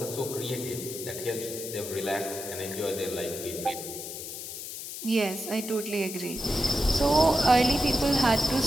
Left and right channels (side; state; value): left; noise; hiss, 8 dB below the sound